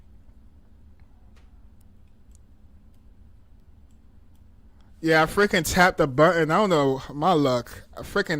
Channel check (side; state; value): both; identical; correlation 1.00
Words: Yeah, I freaking tapped the button. I don't know my luck. I freaking